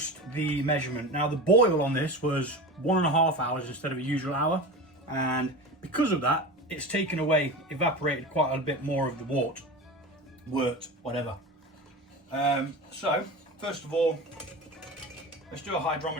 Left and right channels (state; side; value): normal; both; correlation 0.29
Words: the measurement. Now the boil on this was 1.5 hours instead of a usual hour, and because of that, it's taken away, evaporated quite a bit more of the wort, whatever. So first of all, let's do a